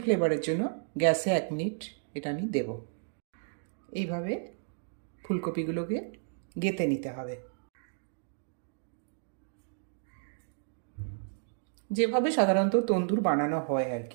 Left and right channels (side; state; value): left; silent; digital silence